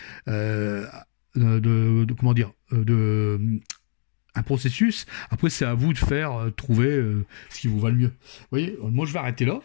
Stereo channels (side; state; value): right; silent; digital silence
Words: Comment dire, un processus. Après, c'est à vous de faire trouver ce qui vous va le mieux. Vous voyez, moi, je vais arrêter là.